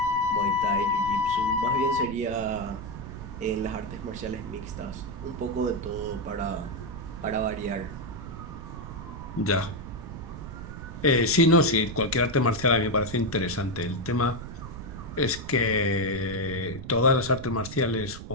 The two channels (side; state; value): right; noise; rumble, 10 dB below the sound